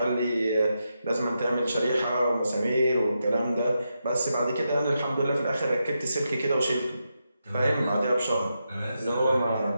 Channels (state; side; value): inverted; both; correlation -0.86